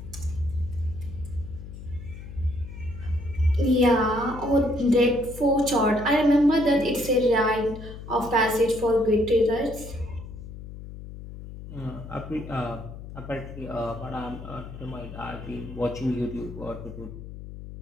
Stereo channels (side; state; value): left; noise; hum, 12 dB below the sound